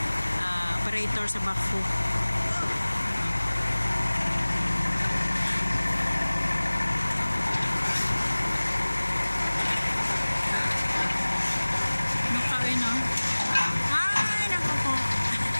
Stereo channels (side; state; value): both; inverted; correlation -1.00